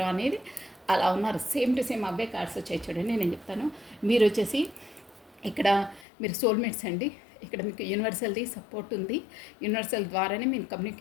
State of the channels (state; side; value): drops out; right; at 6.1 s